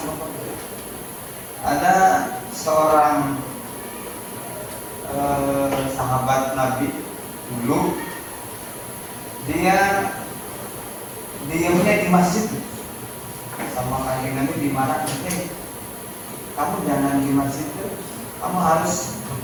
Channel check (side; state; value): both; identical; correlation 1.00